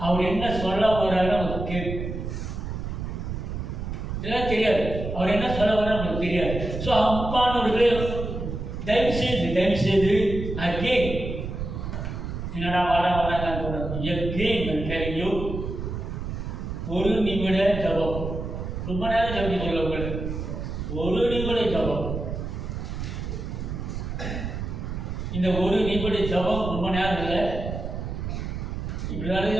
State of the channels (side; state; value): right; noise; rumble, 5 dB below the sound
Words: அவர் என்ன சொல்ல வர்றாரு நமக்கு கேட்கும். இதெல்லாம் தெரியாது. அவர் என்ன சொல்ல வர்றாரு நமக்கு தெரியாது. ஸோ அப்பானவர்களே தயவு செய்து அகெயின் என்னடா வராங்க எகெயின் ஒரு நிமிட ஜபம். ரொம்ப நேரம் ஜபிக்க சொல்ல உங்களுக்கு ஒரு நிமிட ஜபம். இந்த ஒரு நிமிட ஜபம் ரொம்ப நேரம் இல்லை. இப்படி